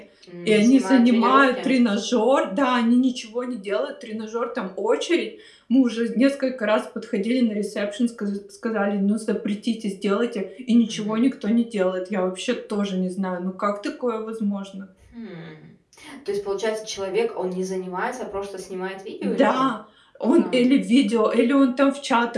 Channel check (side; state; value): both; identical; correlation 1.00